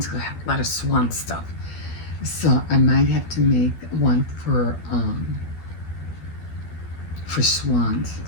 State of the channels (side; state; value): right; late; 12 ms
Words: I have a lot of swan stuff. So I might have to make one for swans,